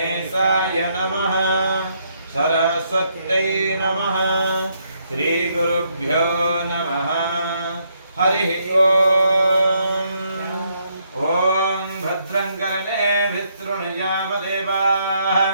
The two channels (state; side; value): inverted; both; correlation -0.74